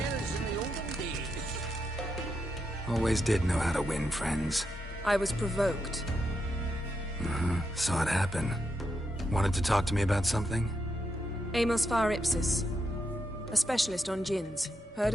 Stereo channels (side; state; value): both; normal; correlation 0.83